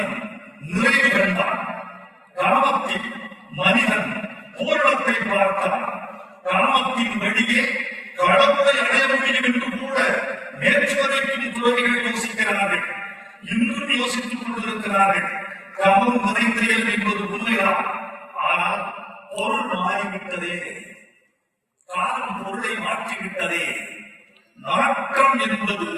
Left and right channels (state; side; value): identical; both; correlation 1.00